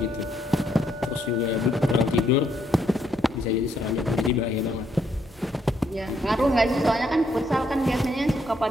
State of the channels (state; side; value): normal; both; correlation 0.73